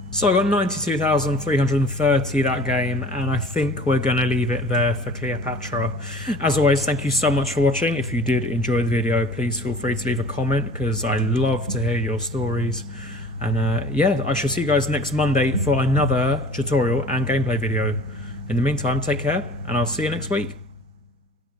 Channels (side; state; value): both; normal; correlation 0.46